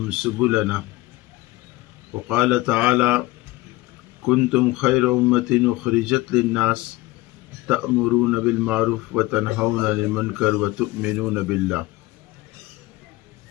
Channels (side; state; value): right; quieter; 20.1 dB